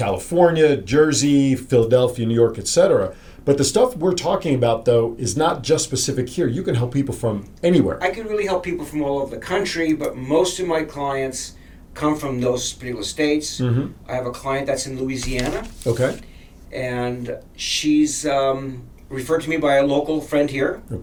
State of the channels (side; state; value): both; identical; correlation 1.00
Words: Jersey, Philadelphia, New York, etc. But the stuff we're talking about, though, is not just specific here. You can help people from anywhere. I can really help people from all over the country, but most of my clients come from those particular states. I have a client that's in Louisiana. Okay. And she's referred to me by a local friend here.